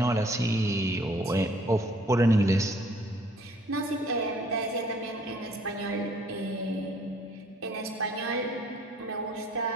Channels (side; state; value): both; normal; correlation 0.59